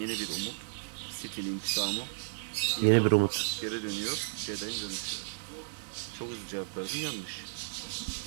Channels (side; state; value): left; silent; digital silence